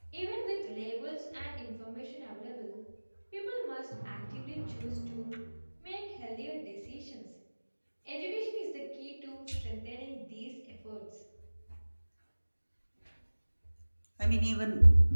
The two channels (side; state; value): both; inverted; correlation -1.00